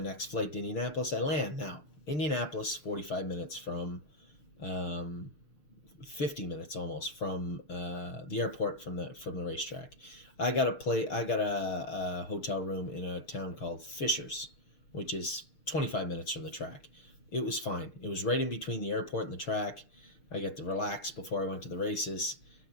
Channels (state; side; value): late; right; 6.6 ms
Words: flight to Indianapolis. I land. Now, Indianapolis, 45 minutes from, 50 minutes almost from the airport, from the racetrack. I got a hotel room in a town called Fishers, which is 25 minutes from the track. It was fine. It was right in between the airport and the track. I got to relax before I went to the races,